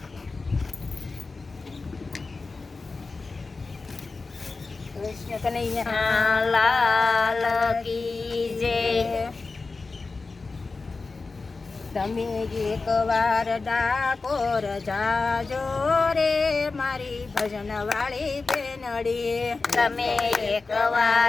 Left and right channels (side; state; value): right; quieter; 3.9 dB